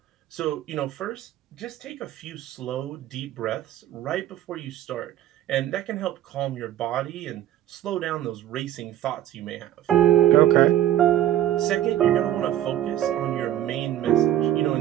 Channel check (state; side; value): quieter; left; 12.2 dB